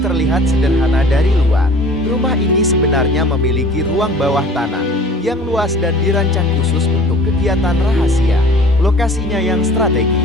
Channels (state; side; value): normal; both; correlation 0.46